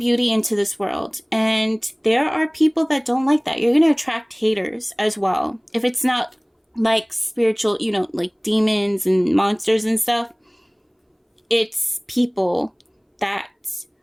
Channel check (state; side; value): identical; both; correlation 1.00